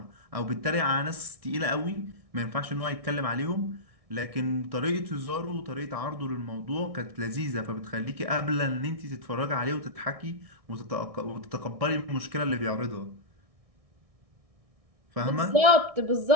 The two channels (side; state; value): left; late; 1.6 ms